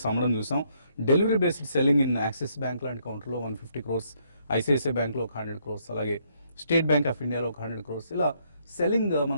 అమ్మడం చూసాం. Delivery based selling in axis bank లాంటి కౌంటర్లో 150 crores, ఐసిఐసిఐ బ్యాంక్లో ఒక 100 crores, అలాగే స్టేట్ బ్యాంక్ ఆఫ్ ఇండియాలో ఒక 100 crores, ఇలా సెల్లింగ్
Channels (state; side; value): inverted; both; correlation -0.71